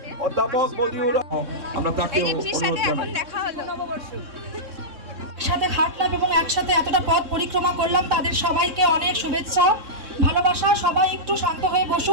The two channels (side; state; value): left; late; 3.6 ms